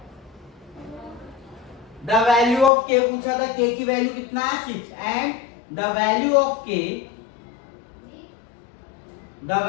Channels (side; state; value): right; drops out; at 2.7 s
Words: the value of k पूछा था, k की वैल्यू कितना है 6 and the value of k